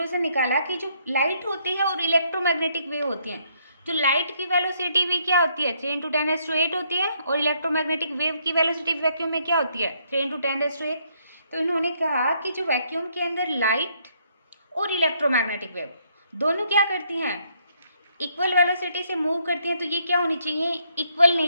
निकाला कि जो लाइट होती है और इलेक्ट्रोमैग्नेटिक वेव होती हैं, जो लाइट की वेलोसिटी भी क्या होती है? 3 इंटू 10⁸ होती है, और इलेक्ट्रोमैग्नेटिक वेव की वेलोसिटी वैक्यूम में क्या होती है? 3 इंटू 10⁸। तो इन्होंने कहा कि जो वैक्यूम के अंदर लाइट और इलेक्ट्रोमैग्नेटिक वेव दोनों क्या करती हैं? इक्वल वेलोसिटी से मूव करती हैं। तो ये क्या होनी चाहिए? इक्वल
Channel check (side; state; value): both; inverted; correlation -0.71